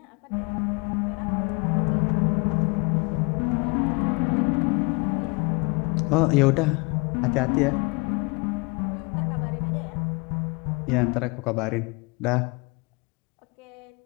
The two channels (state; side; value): quieter; right; 29.5 dB